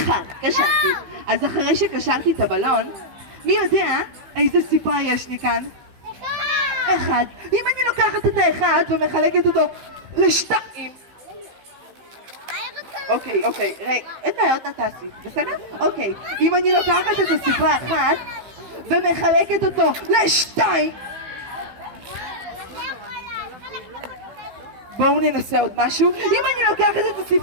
קשרתי. אז אחרי שקשרתי את הבלון, מי יודע איזה ספרה יש לי כאן? אחד. אם אני לוקחת את האחד ומחלקת אותו לשתיים. אוקיי, רגע, אין בעיות נתעשי, בסדר? אוקיי, אם אני לוקחת את הספרה אחת ומחלקת אותו לשתיים. בואו ננסה עוד משהו. אם אני לוקחת את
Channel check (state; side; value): late; left; 15 ms